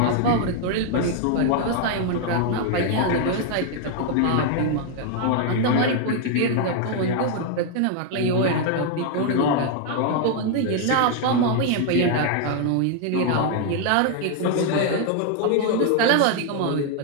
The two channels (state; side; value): different; both; correlation 0.00